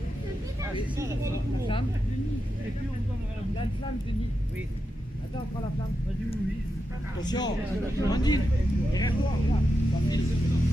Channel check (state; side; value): normal; both; correlation 0.88